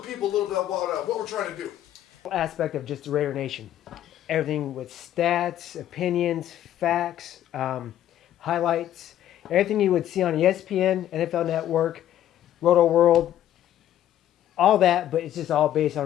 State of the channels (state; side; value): quieter; right; 11.9 dB